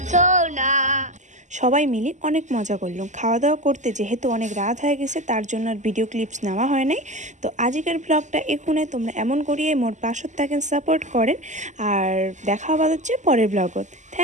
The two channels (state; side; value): late; left; 0.34 ms